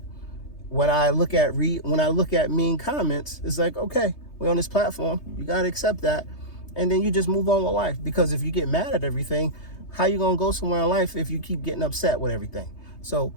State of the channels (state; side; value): late; right; 3.2 ms